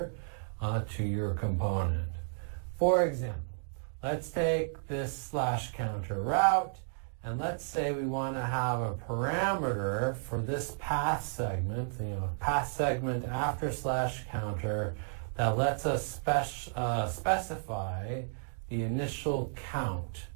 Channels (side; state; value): left; silent; digital silence